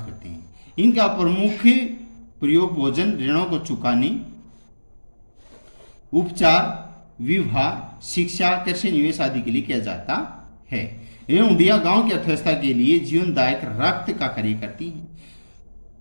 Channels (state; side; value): inverted; both; correlation -1.00